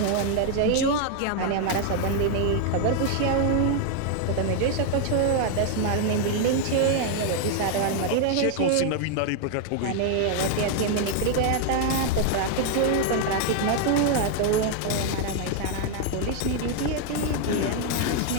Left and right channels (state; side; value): different; both; correlation 0.00